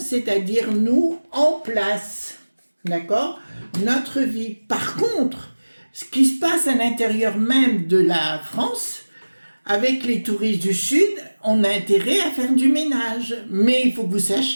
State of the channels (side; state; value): both; inverted; correlation -1.00